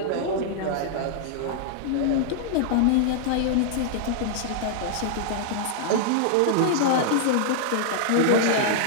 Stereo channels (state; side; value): different; both; correlation -0.01